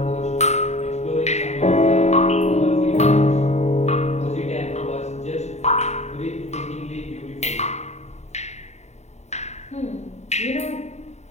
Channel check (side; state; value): right; late; 0.32 ms